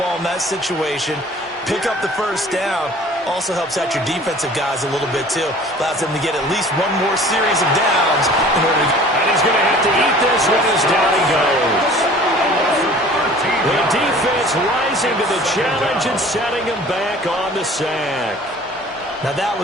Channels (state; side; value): normal; both; correlation 0.48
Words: in that situation, pick up the first down. Also helps out your defensive guys a little bit, too. Allows them to get at least one more series of downs in order to... And he's going to have to eat this one as down he goes. The defense rising to the challenge and setting him back on the sack. Now that